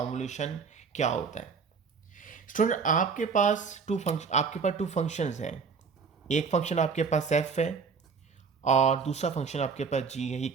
क्या होता है। स्टूडेंट आपके पास टू फंक्शंस हैं, एक फंक्शन आपके पास f है और दूसरा फंक्शन आपके पास g है। ये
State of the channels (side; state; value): left; quieter; 5.5 dB